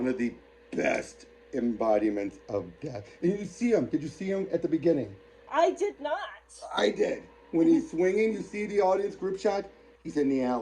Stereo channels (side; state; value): both; identical; correlation 1.00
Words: of the best embodiments of death. And you see him. Did you see him at the beginning? I did not. I did. When he's swinging, you see the audience group shot. He's in the